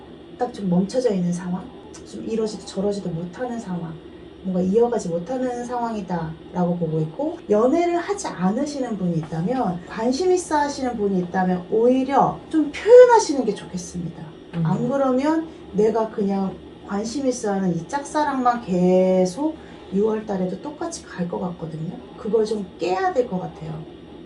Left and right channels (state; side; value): identical; both; correlation 1.00